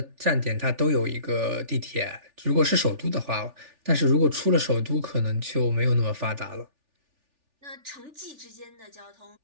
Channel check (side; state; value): left; late; 3.4 ms